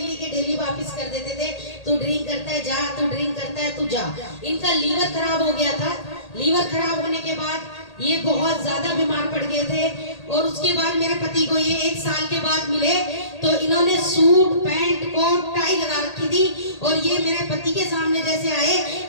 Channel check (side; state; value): right; late; 1.8 ms